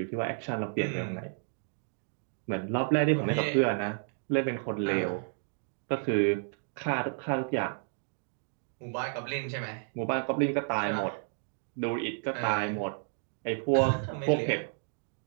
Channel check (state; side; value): silent; left; 57 dB below the other